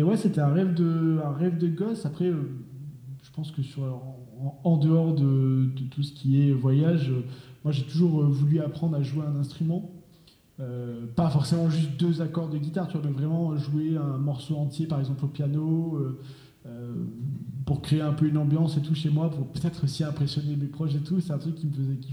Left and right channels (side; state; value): both; identical; correlation 1.00